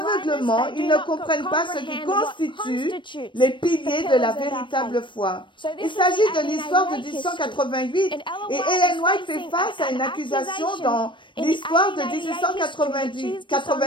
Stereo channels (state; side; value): late; right; 0.23 ms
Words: ils ne comprennent pas ce qui constitue les piliers de la véritable foi. Il s'agit de l'histoire de 1888 et Ellen White fait face à une accusation dans l'histoire de